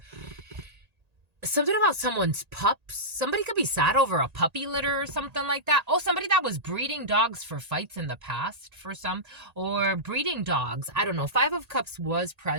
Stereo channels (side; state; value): left; late; 1.8 ms